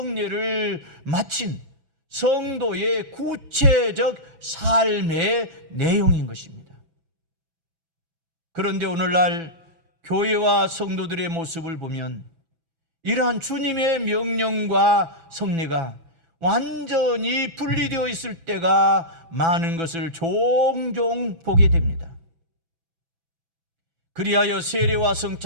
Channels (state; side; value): late; left; 6.0 ms